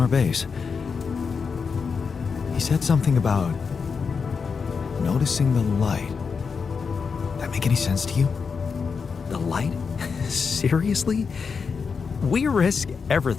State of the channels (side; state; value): right; quieter; 5.5 dB